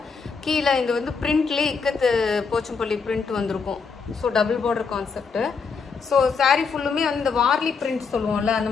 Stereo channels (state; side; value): quieter; right; 5.2 dB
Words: கீழே இந்த வந்து பிரிண்ட்லேயே இக்கத்து போச்சம்பள்ளி பிரிண்ட் வந்திருக்கும். So double border concept. So sorry ஃபுல்லுமே வந்து இந்த வார்லி பிரிண்ட் சொல்லுவோம்ல, அந்த